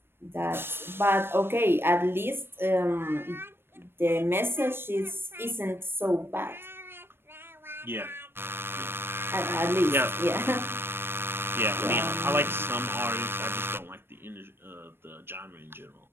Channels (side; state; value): left; late; 0.11 ms